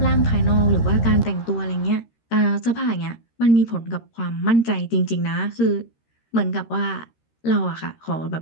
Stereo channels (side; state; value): right; late; 13 ms